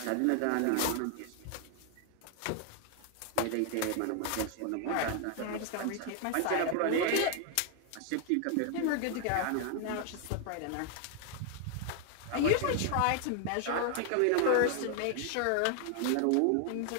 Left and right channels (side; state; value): both; different; correlation 0.00